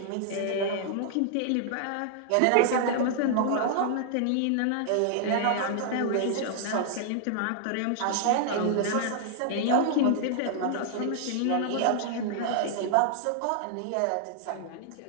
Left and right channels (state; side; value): different; both; correlation -0.01